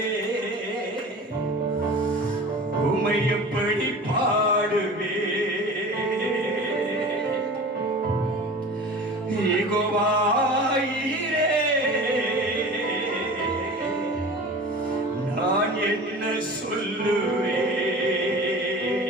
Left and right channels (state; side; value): normal; both; correlation 0.37